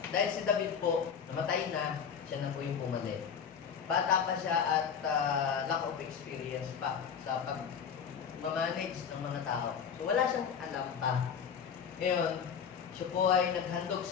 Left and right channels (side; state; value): right; quieter; 7.2 dB